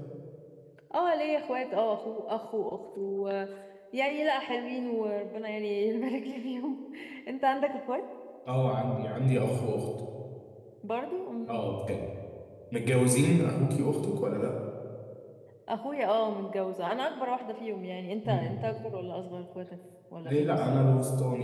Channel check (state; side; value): identical; both; correlation 1.00